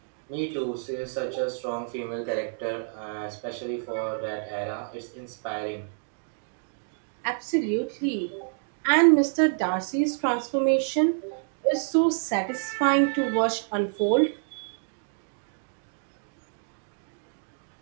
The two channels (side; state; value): left; silent; digital silence